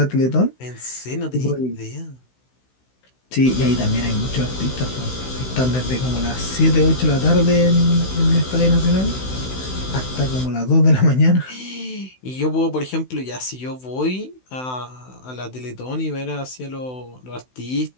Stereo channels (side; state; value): right; late; 16 ms